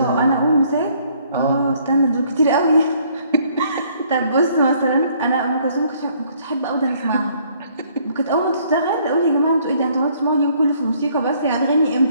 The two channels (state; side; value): inverted; both; correlation -0.64